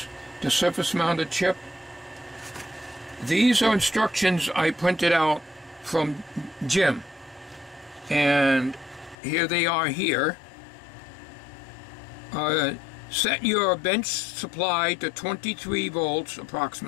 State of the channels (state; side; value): drops out; right; at 9.2 s